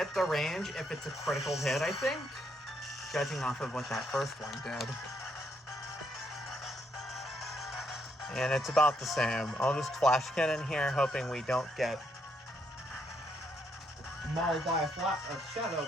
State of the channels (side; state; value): both; normal; correlation 0.75